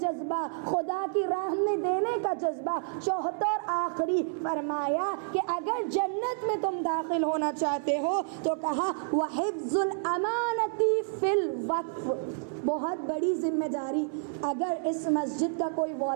خدا کی راہ میں دینے کا جذبہ۔ چوتھا اور آخری فرمایا کہ اگر جنت میں تم داخل ہونا چاہتے ہو تو کہا وحفظ الامانتی فی الوقف، بہت بڑی ذمہ داری۔ اگر اس مسجد کا کوئی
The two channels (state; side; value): silent; left; 58 dB below the other